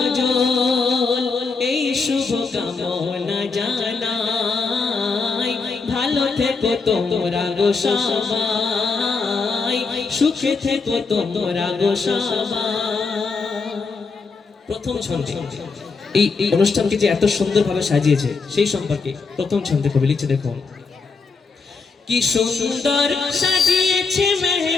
এই শুভ কামনা জানাই ভালো থেকো তোমরা গো সবাই সুখে থেকো তোমরা গো সবাই। প্রথম ছন্দে এই অনুষ্ঠানকে যে এত সুন্দরভাবে সাজিয়েছে সেই সম্পর্কে প্রথম ছন্দে কবি লিখছে দেখুন। কি সুন্দর সাজিয়েছে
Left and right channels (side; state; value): right; quieter; 4.5 dB